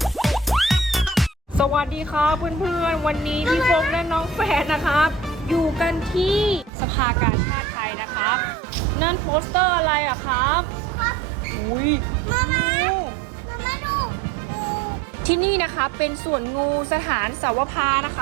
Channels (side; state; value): left; drops out; at 6.7 s